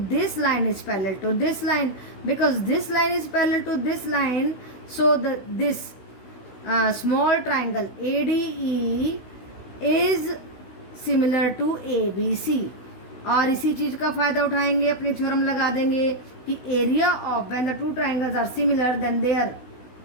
line is parallel to this line, because this line is parallel to this line, so this small triangle ADE is similar to ABC। और इसी चीज का फायदा उठाएंगे, अपनी थ्योरम लगा देंगे कि area of when the two triangles are similar then their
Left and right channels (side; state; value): right; late; 16 ms